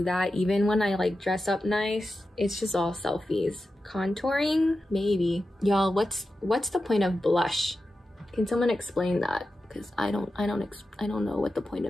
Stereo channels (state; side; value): normal; both; correlation 0.91